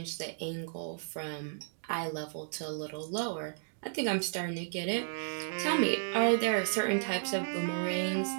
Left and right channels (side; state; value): left; silent; digital silence